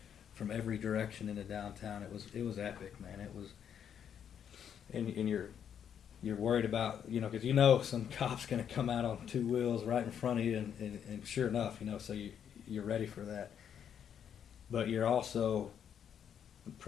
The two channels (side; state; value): right; quieter; 8.6 dB